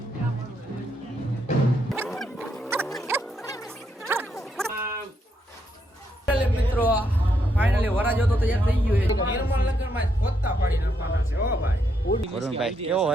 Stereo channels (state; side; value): normal; both; correlation 0.77